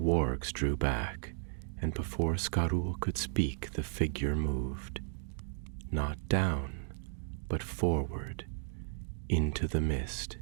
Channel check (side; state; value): left; silent; digital silence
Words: drew back, and before Skarul could speak, the figure moved, not down, but forward, into the mist,